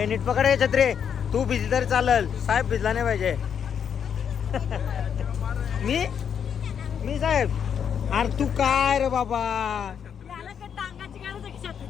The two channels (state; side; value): quieter; right; 7.8 dB